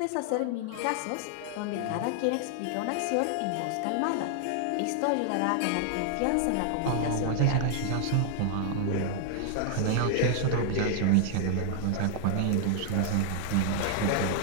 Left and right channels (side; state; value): both; different; correlation 0.00